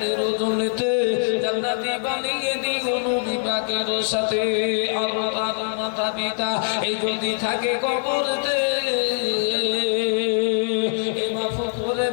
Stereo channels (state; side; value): silent; right; 59 dB below the other